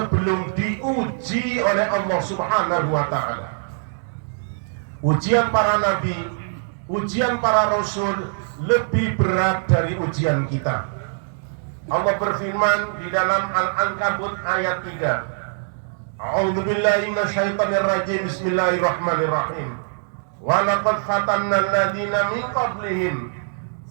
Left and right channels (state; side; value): silent; left; digital silence